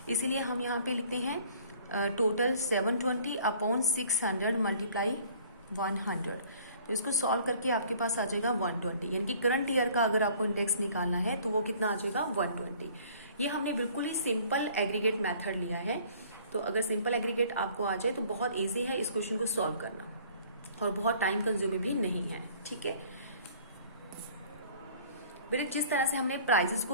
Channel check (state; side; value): inverted; both; correlation -0.53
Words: इसीलिए हम यहाँ पे लिखते हैं टोटल 720 अपॉन 600 मल्टीप्लाई 100। तो इसको सॉल्व करके आपके पास आ जाएगा 120, यानी कि करंट ईयर का अगर आपको इंडेक्स निकालना है तो वो कितना आ जाएगा 120। ये हमने बिल्कुल ही सिंपल एग्रीगेट मेथड लिया है। तो अगर सिंपल एग्रीगेट आपको आ जाए तो बहुत ईजी है इस क्वेश्चन को सॉल्व करना और बहुत टाइम कंज्यूमिंग भी नहीं है, ठीक है। बेटे जिस तरह से हमने प्राइजेस